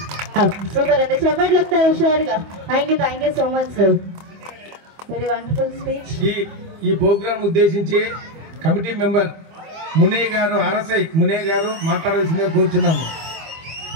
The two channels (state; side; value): late; left; 25 ms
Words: సూపర్ అండి. చెప్పట్లు వస్తాయి హుషారుగా. Thank you so much sir. Very wonderful speech. ఈ ప్రోగ్రాం ఉద్దేశించి కమిటీ మెంబర్ మునయ్య గారు, ఆర్ఎస్ఐ మునయ్య గారు మాట్లాడాల్సిందిగా కోరుచున్నాము.